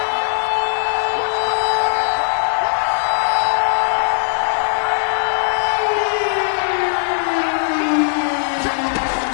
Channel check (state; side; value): silent; right; digital silence